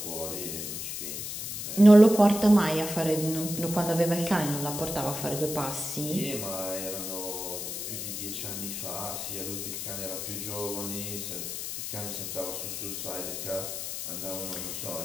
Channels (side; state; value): left; noise; hiss, 5 dB below the sound